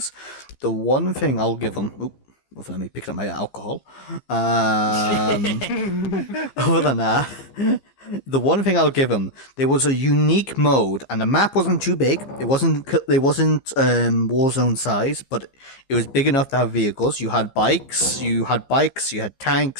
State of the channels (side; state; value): right; late; 15 ms